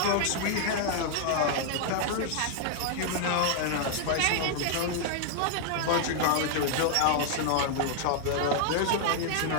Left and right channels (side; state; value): both; different; correlation -0.01